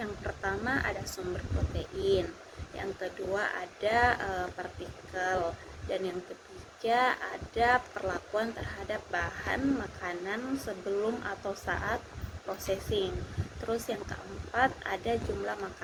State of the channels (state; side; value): identical; both; correlation 1.00